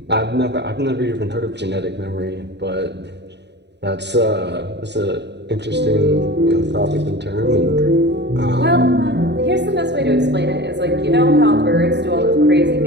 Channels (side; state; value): left; late; 0.50 ms